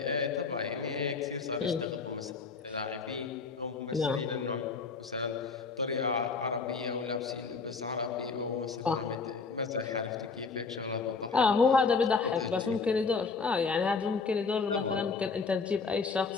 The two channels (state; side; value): quieter; right; 4.7 dB